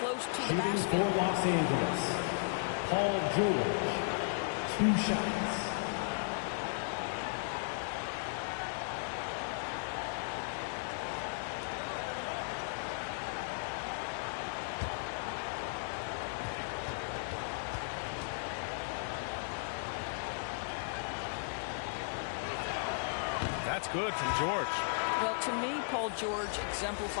to the basket. For Los Angeles, Paul George, 2 shots. That's good from George. Well, to me, Paul George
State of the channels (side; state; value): right; silent; digital silence